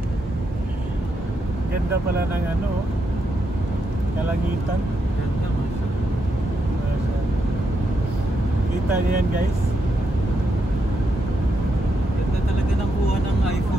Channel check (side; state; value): both; normal; correlation 0.82